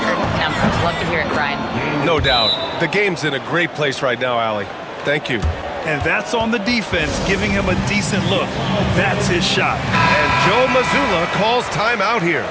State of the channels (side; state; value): both; identical; correlation 1.00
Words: numbers. Love to hear it, Brian. No doubt. The game's in a great place right now, Allie. Thank you. And that's on the defense, giving him a decent look. That's his shot. And Joe Mazzulla calls timeout here.